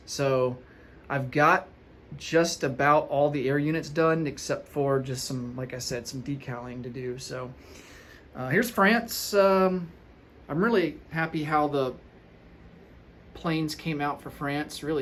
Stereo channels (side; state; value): both; identical; correlation 1.00